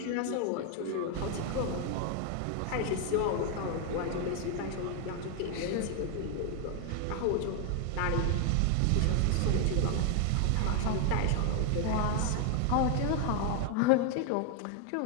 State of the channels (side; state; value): both; different; correlation 0.01